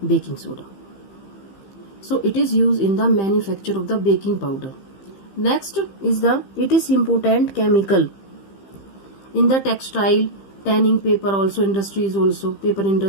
baking soda. So it is used in the manufacture of the baking powder. Next is it is important chemical in the textile, tanning paper also industries also, paper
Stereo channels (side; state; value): right; late; 15 ms